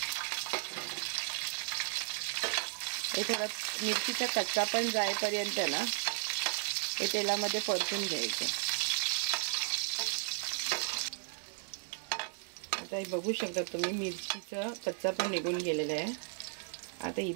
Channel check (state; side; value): silent; left; digital silence